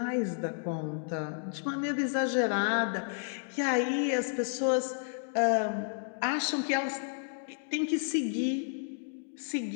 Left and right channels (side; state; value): right; silent; digital silence